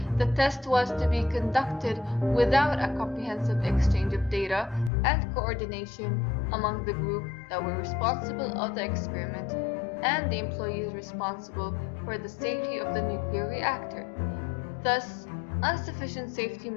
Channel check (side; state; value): right; drops out; at 4.9 s